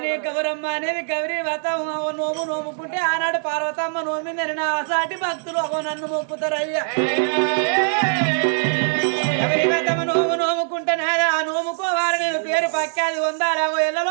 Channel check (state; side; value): silent; left; digital silence